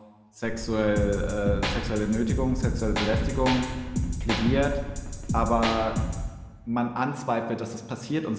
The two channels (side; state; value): both; identical; correlation 1.00